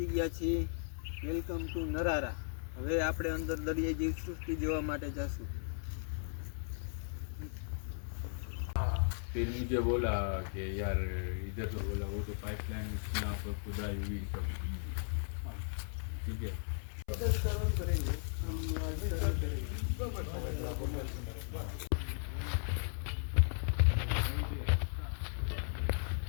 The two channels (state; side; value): silent; right; 53 dB below the other